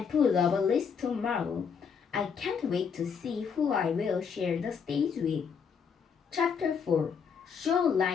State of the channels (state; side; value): quieter; right; 6.5 dB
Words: put up a list tomorrow. I can't wait to see who I will share the stage with. Chapter 4 Show